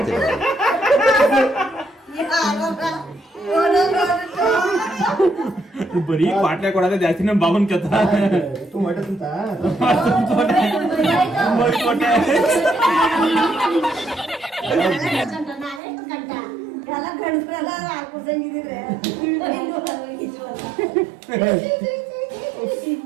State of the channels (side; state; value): left; drops out; at 15.8 s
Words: ಬರೀ ಪಾಟ್ಲೆ ಕೊಡೋದೇ ಜಾಸ್ತಿ ನಮ್ Baban ಕಥ